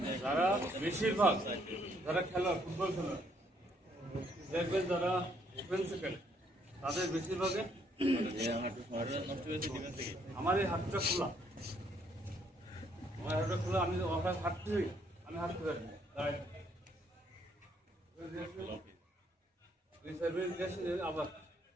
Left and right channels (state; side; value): normal; both; correlation 0.69